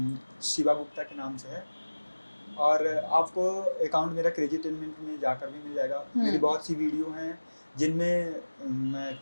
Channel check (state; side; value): inverted; both; correlation -1.00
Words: शिवा गुप्ता के नाम से है, और आपको अकाउंट मेरा क्रेजी टेनमेंट में जाकर भी मिल जाएगा। मेरी बहुत सी वीडियो हैं जिनमें मैं